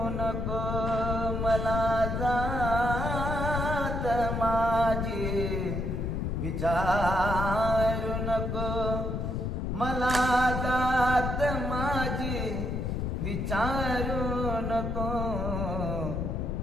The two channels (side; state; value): left; noise; rumble, 1 dB below the sound